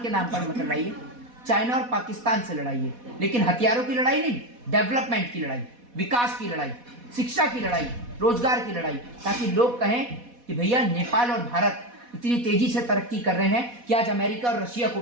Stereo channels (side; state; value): left; late; 4.1 ms